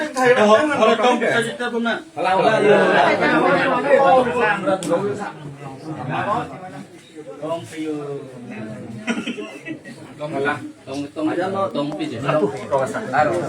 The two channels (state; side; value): identical; both; correlation 1.00